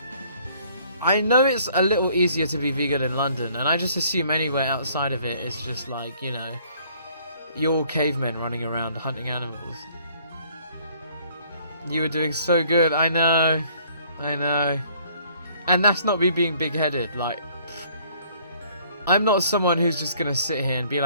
I know it's a little easier to be vegan in London, and I just assume anywhere outside of it is just like, you know, you're all cavemen running around hunting animals. You were doing so good, I know. And that's not me being big-headed, like, I'm not someone who's just gonna sit here and be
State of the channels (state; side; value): inverted; both; correlation -0.60